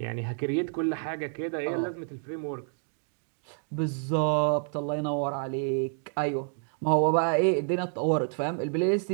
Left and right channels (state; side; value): silent; left; 59 dB below the other